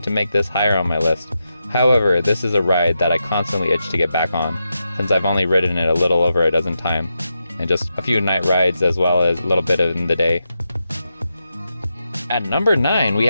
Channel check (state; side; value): inverted; both; correlation -0.87